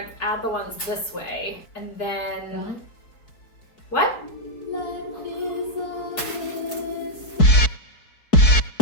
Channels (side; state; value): right; late; 4.6 ms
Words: add the ones this way, and then, what?